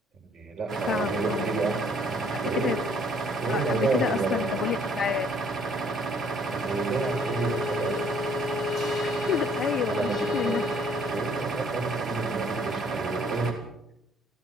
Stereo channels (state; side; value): normal; both; correlation 0.61